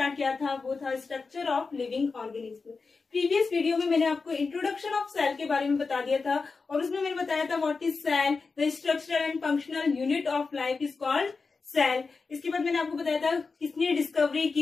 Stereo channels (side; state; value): right; quieter; 4.5 dB